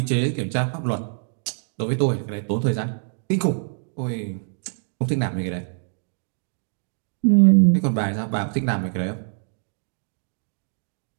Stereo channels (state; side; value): silent; left; 56 dB below the other